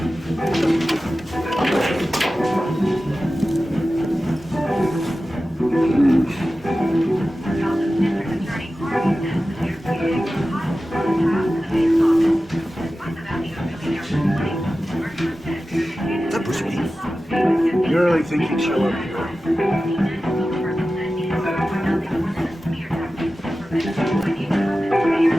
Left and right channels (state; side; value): normal; both; correlation 0.94